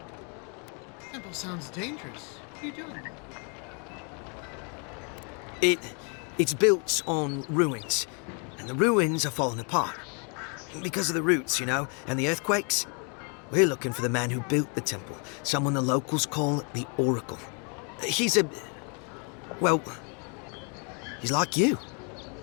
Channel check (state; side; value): quieter; right; 37.1 dB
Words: Temple sounds dangerous. What are you doing? It's built on ruins, and the ruins are falling apart. Because of the roots, you know, and the earthquakes. We're looking for the man who built the temple, someone the locals call the Oracle. He's well, he's like you.